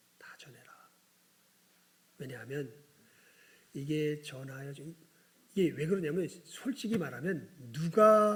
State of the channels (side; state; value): both; identical; correlation 1.00